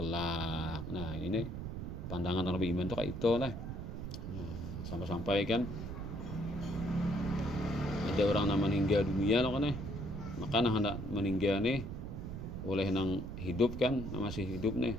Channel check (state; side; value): noise; right; rumble, 6 dB below the sound